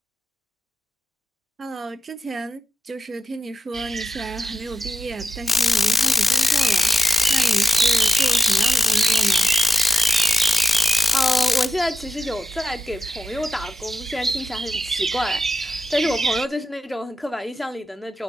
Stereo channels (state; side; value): normal; both; correlation 0.85